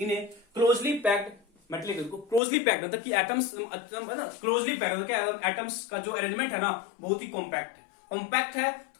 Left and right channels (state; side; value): drops out; right; at 2.4 s